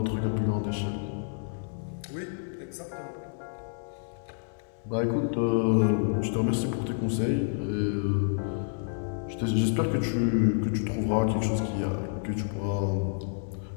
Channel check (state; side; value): silent; right; 59 dB below the other